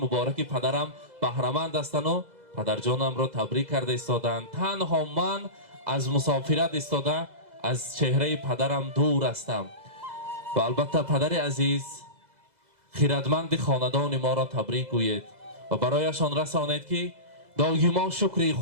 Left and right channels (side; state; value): left; late; 2.0 ms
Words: پدرم بهره‌مند هستند و پدر جانم را تبریک کرده ایستادند. تنها من از مسافرت ایستاده از چهره پدرم دور هستم و البته پدر عزیز خیرتمند خاندان ما را تبریک گویید و برایشان رسانید که دایما شکر